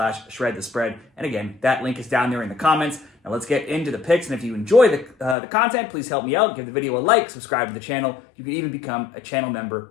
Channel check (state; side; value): drops out; right; at 5.4 s